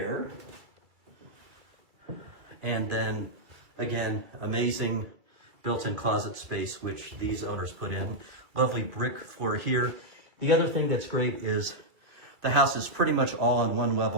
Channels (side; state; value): left; late; 2.3 ms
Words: And then again, amazing built-in closet space, which these owners put in. Lovely brick floor here. The other thing that's great is The house is pretty much all on one